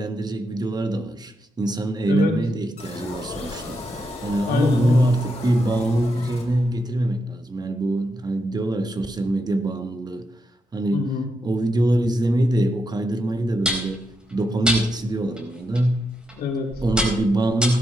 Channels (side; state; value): both; normal; correlation 0.83